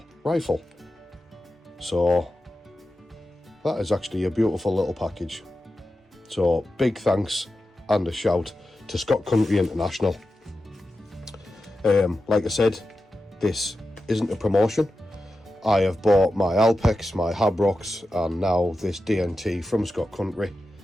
rifle. So that is actually a beautiful little package. So big thanks and a shout to Scott Country International. Like I said, this isn't a promotion. I have bought my Alpex, my Habrocks, and now this DNT from Scott Country,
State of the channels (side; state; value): both; normal; correlation 0.91